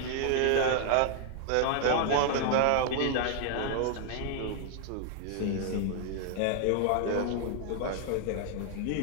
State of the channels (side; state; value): both; different; correlation 0.00